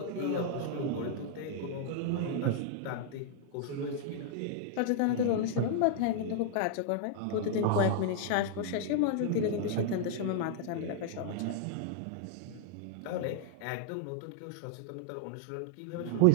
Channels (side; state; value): both; different; correlation -0.01